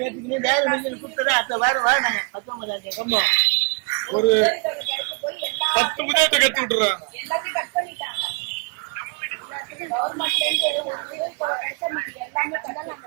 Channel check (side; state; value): left; quieter; 34.7 dB